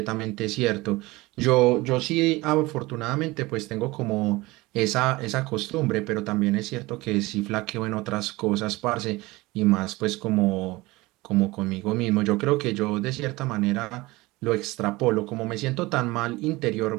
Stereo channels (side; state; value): left; quieter; 21.0 dB